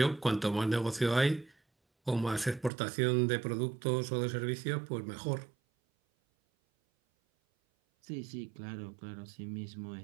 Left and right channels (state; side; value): drops out; left; at 2.7 s